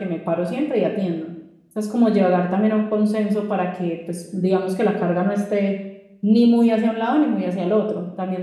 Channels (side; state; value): both; identical; correlation 1.00